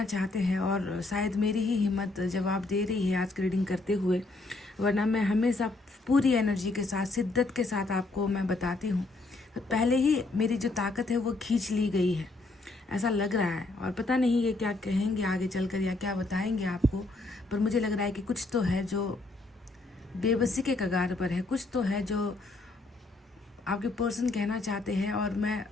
चाहते हैं और शायद मेरी ही हिम्मत जवाब दे रही है आज की रीडिंग करते हुए, वरना मैं हमेशा पूरी एनर्जी के साथ, शिद्दत के साथ आपको मैं बताती हूँ। पहले ही मेरी जो ताकत है वो खींच ली गई है, ऐसा लग रहा है। और पता नहीं ये क्या कहेंगे आगे चलकर या क्या बताएंगे आपको, पर मुझे लग रहा है कि कुछ तो है जो बेबसी के कगार पर है, कुछ तो है जो आपके पर्सन कहना चाहते हैं और मैं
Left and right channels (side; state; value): right; quieter; 3.2 dB